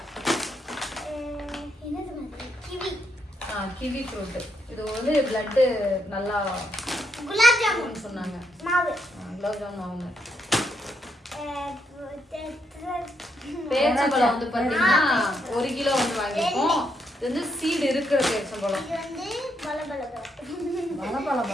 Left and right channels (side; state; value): both; normal; correlation 0.78